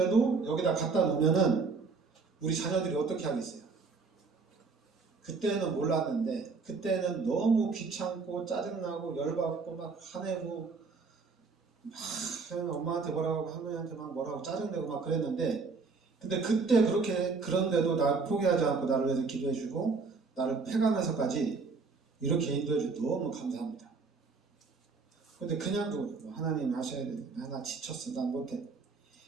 여기다 갖다 놓으면은 우리 자녀들이 어떻게 하겠어요? 그때는 몰랐는데 그때는 너무 귀찮고 짜증나고 열받고 막 화내고 막 엄마한테 뭐라고 할머니한테 막 뭐라고 짜증내고 막 그랬는데, 근데 그때 그런데도 날 포기하지 않고 나를 위해서 기도해주고 나를 패가면서까지 이렇게 인도해주고 너무 감사합니다. 근데 그냥 하나님 하셔야 돼. 나 지쳤어. 난 못해.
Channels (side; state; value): left; quieter; 4.5 dB